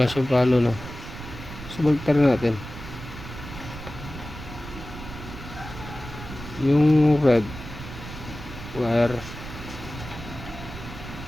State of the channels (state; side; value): noise; right; rumble, 12 dB below the sound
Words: siyang palo, no? So baliktad natin. Yung red wire